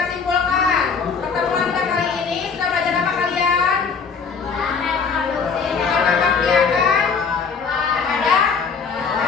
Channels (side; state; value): right; quieter; 5.6 dB